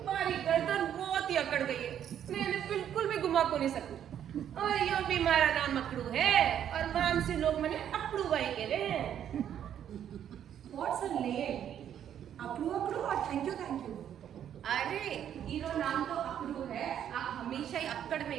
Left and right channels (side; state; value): left; quieter; 9.8 dB